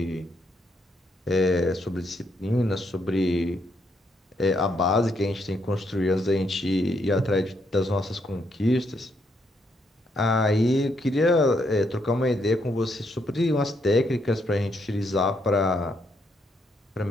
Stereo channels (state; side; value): normal; both; correlation 0.75